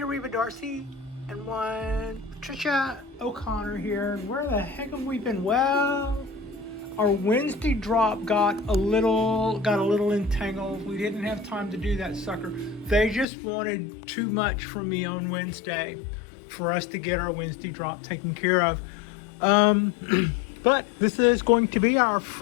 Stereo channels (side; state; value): right; drops out; at 13.2 s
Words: Reva Darcy and one Patricia O'Connor here. Where the heck have we been? Well, our Wednesday drop got a little entangled. We didn't have time to do that sucker. They just wanted too much from me on Wednesday for us to get our Wednesday drop taken care of. But this is going to be our